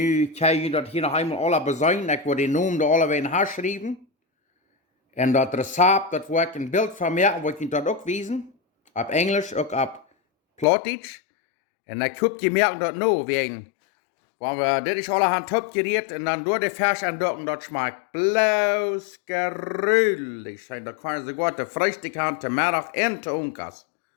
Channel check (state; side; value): drops out; right; at 10.7 s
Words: kan je dat hier nog eenmaal alle bezuinigen. Ik wil die naam er alle weer in haar schrijven. En dat recept, dat wil ik een beeld van maken, wil ik je dat ook wijzen. Op Engels, ook op plautdietsch. En dan kun je merken dat nou, wegen. Want dit is allerhand opgereed en dan door de fesh en dat schmeckt bloos gruwelijk. En dan kan je sogar de Freitag haben, te middag en te onkas.